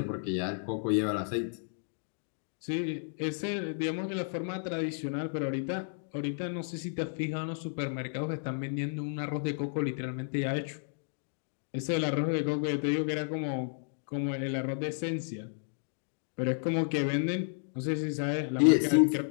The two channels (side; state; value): right; silent; digital silence